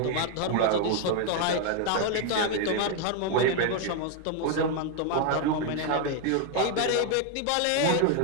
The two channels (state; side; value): different; both; correlation 0.01